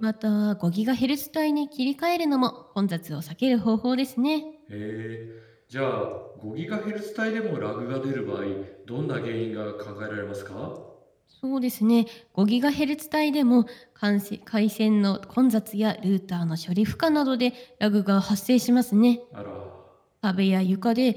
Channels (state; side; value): identical; both; correlation 1.00